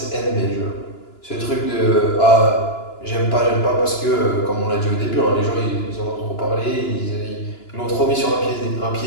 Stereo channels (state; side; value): late; right; 2.9 ms